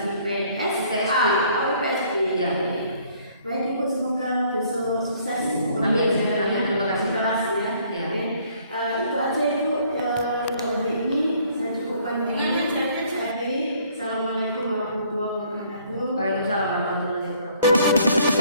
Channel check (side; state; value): both; inverted; correlation -0.61